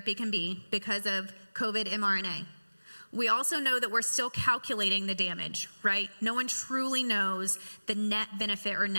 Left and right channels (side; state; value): both; inverted; correlation -1.00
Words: can be because of COVID mRNA. We also know that we're still calculating the damage, right? No one truly knows the net benefit or